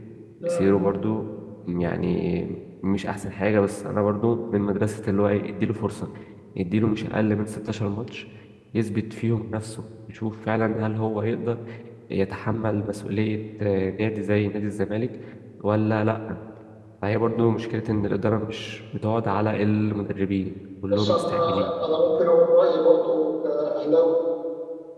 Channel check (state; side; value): identical; both; correlation 1.00